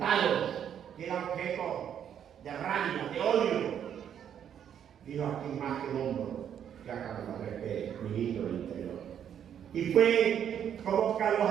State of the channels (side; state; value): left; quieter; 9.1 dB